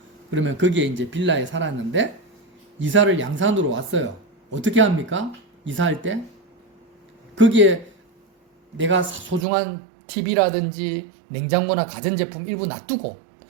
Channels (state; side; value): drops out; left; at 9.5 s